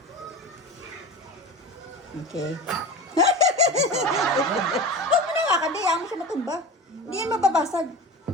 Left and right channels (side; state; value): both; normal; correlation 0.32